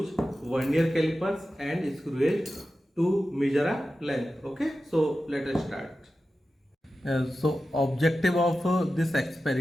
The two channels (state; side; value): normal; both; correlation 0.93